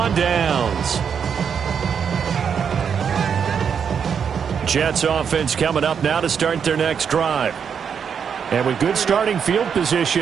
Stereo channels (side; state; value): left; quieter; 7.2 dB